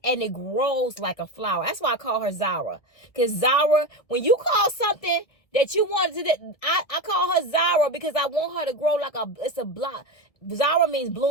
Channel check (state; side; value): late; right; 1.7 ms